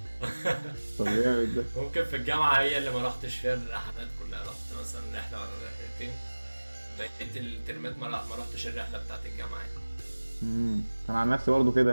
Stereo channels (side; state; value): both; inverted; correlation -1.00